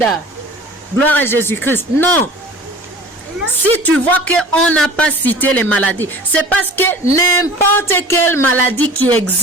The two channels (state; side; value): normal; both; correlation 0.43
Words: Gloire à Jésus-Christ. Non. Si tu vois qu'on n'a pas cité les maladies, c'est parce que n'importe quelle maladie qui